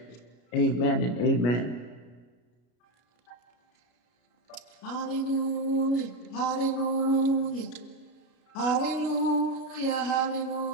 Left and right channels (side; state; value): right; late; 33 ms